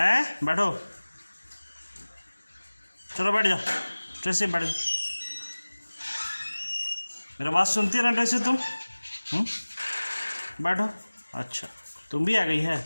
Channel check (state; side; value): inverted; both; correlation -1.00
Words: बैठो, चलो बैठ जाओ। ट्रेसे बैठ जाओ। मेरा बात सुनती है ना ट्रेसे तुम? बैठो। अच्छा तुम भी आ गई है?